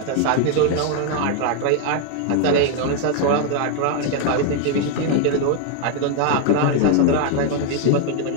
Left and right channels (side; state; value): both; different; correlation 0.00